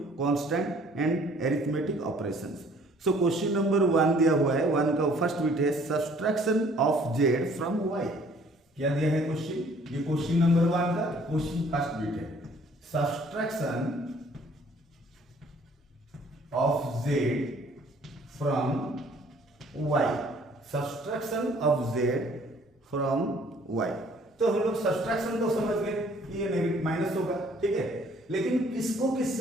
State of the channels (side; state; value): both; normal; correlation 0.58